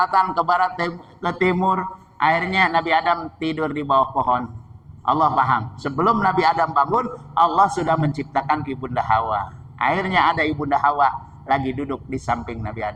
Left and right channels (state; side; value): identical; both; correlation 1.00